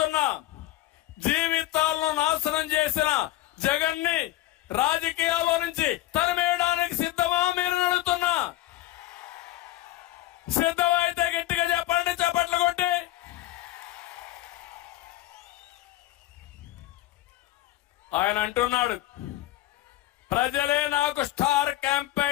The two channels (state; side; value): quieter; right; 15.8 dB